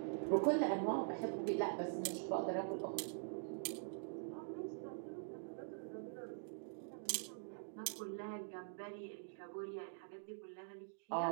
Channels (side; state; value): left; silent; digital silence